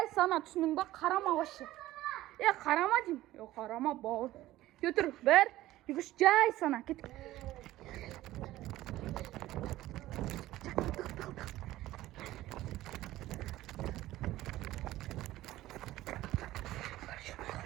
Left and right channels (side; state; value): left; quieter; 15.8 dB